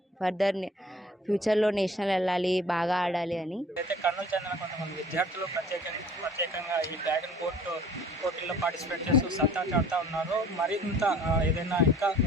ఫర్దర్ ఫ్యూచర్లో నేషనల్ వెళ్ళాలి, బాగా ఆడాలి అని. అయితే కర్నూలు చెందిన కొంతమంది విద్యార్థులు ప్రత్యేకంగా ఈ డ్రాగన్ బోట్ పోటీల్లో పార్టిసిపేట్ చేస్తూ సత్తా చాటుతూ ఉన్నారు. మరింత ఏదైనా ఇంకా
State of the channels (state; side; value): normal; both; correlation 0.50